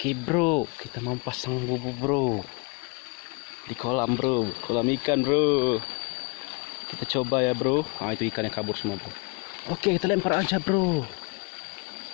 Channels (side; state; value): right; quieter; 31.4 dB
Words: Oke bro, kita mau pasang bubu bro di kolam bro, kolam ikan bro. Kita coba ya bro. Ah itu ikannya kabur semua bro. Oke kita lempar aja bro.